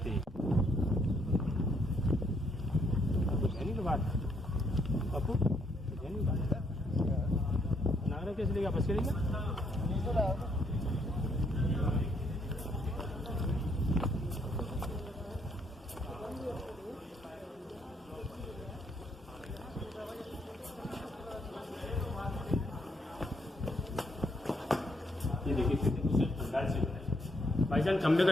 बापू नागरा कैसे लेगा, बस करेगा। ये देखिए भाईजान, खंबे का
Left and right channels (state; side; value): normal; both; correlation 0.72